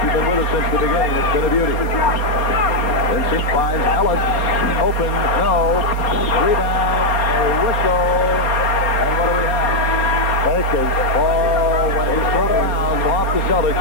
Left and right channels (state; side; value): late; right; 4.3 ms